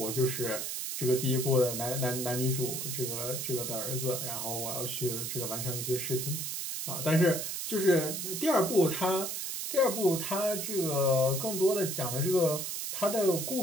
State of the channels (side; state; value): right; noise; hiss, 4 dB below the sound